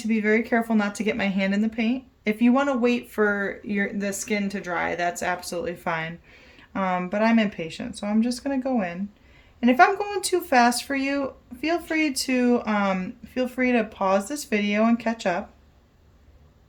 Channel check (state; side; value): identical; both; correlation 1.00